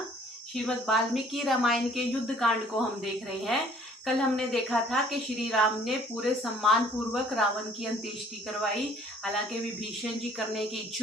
श्रीमद् वाल्मीकि रामायण के युद्ध कांड को हम देख रहे हैं। कल हमने देखा था कि श्री राम ने पूरे सम्मान पूर्वक रावण की अंत्येष्टि करवाई। हालांकि विभीषण जी करने के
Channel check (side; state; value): both; normal; correlation 0.57